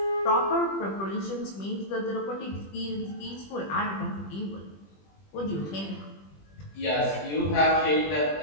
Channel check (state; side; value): late; right; 20 ms